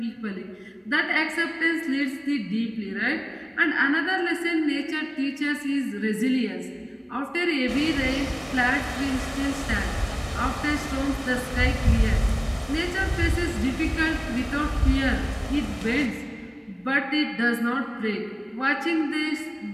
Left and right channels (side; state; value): both; identical; correlation 1.00